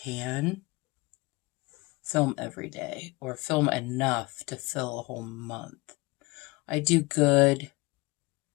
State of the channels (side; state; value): right; quieter; 23.9 dB